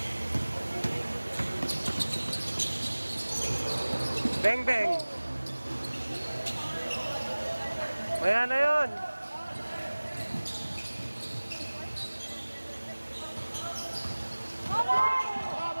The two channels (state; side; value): inverted; both; correlation -1.00